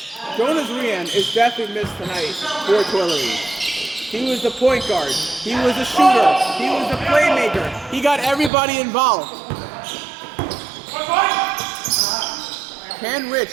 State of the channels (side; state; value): left; drops out; at 8.5 s